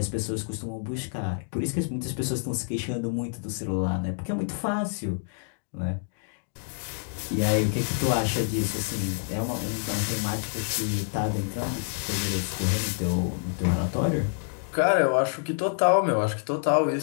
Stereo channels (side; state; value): right; silent; digital silence